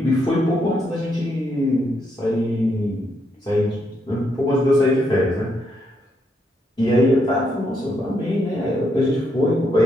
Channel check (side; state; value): both; normal; correlation 0.77